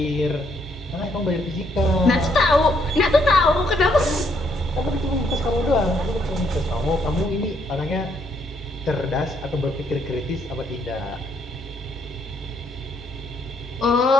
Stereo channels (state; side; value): normal; both; correlation 0.72